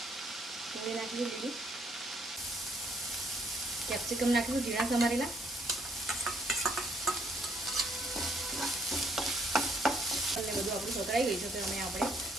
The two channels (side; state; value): both; normal; correlation 0.68